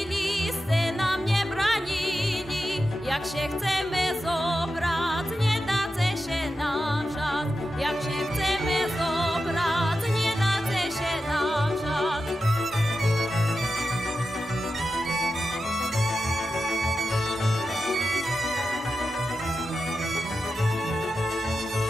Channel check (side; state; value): both; normal; correlation 0.91